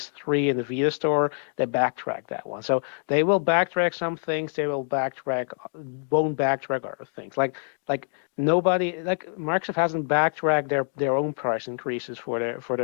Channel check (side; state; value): right; silent; digital silence